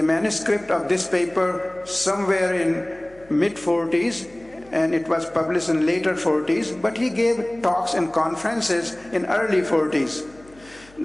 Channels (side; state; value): left; noise; hum, 26 dB below the sound